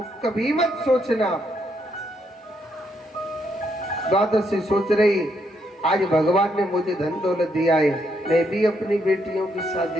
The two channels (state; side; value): normal; both; correlation 0.76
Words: कभी मत सोचना। द्वादशी सोच रही, आज भगवान ने मुझे धन दौलत दिया है, मैं भी अपनी बेटियों की